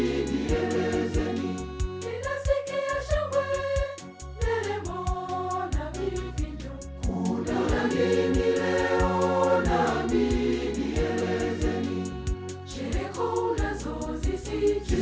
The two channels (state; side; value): identical; both; correlation 1.00